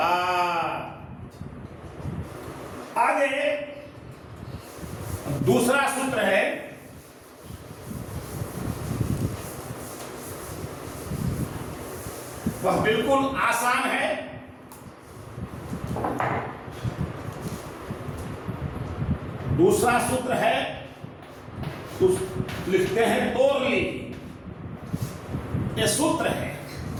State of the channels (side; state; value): both; identical; correlation 1.00